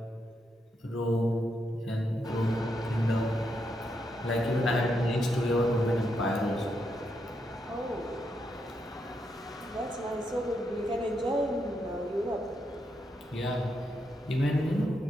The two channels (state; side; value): normal; both; correlation 0.81